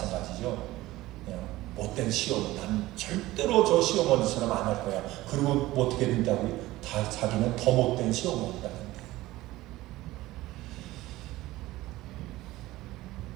못된 시어머니, 난 절대로 저 시어머니처럼 안 할 거야. 그리고 어떻게 된다고요? 다 자기는 더 못된 시어머니가 된대요.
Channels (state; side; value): quieter; left; 17.5 dB